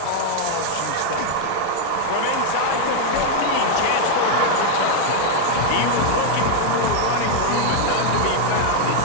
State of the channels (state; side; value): different; both; correlation 0.00